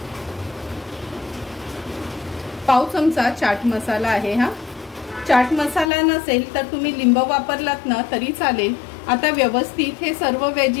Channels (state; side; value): drops out; right; at 5.9 s